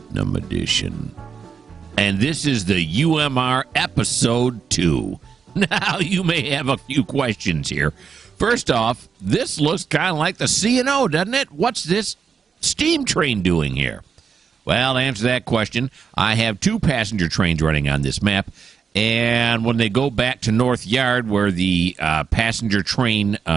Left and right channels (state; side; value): quieter; left; 6.2 dB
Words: Edition. And this is the UMR Episode 2. Now, you may have a few questions here. First off, this looks kind of like the C&O, doesn't it? What's this steam train doing here? Well, to answer that question, I have two passenger trains running on this map. And when they go back to North Yard, where the passenger train